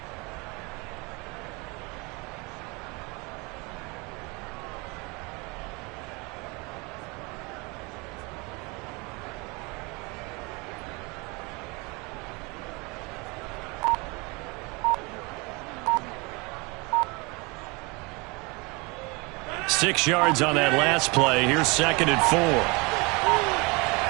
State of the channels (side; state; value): left; quieter; 27.5 dB